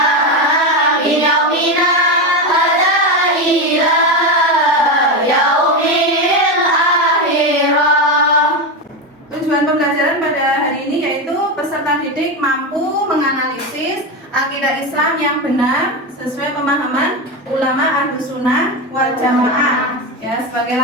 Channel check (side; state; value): both; normal; correlation 0.15